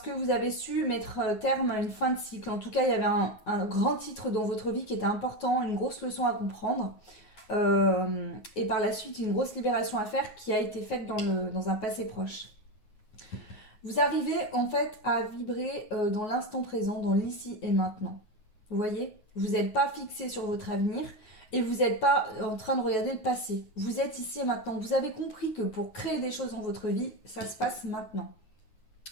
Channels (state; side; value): late; right; 9.5 ms